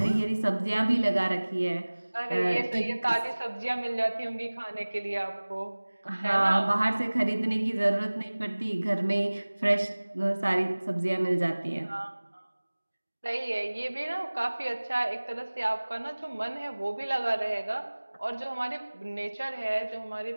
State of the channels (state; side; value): inverted; both; correlation -1.00